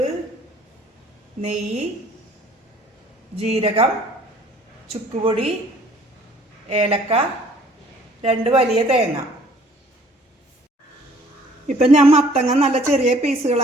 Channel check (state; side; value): normal; both; correlation 0.56